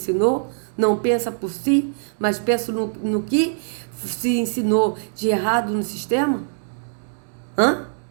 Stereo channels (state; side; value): silent; left; digital silence